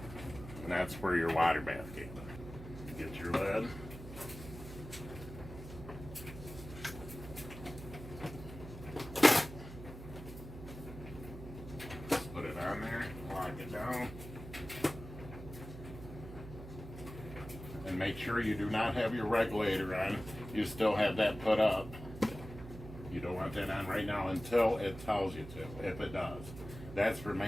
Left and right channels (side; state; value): right; noise; hum, 12 dB below the sound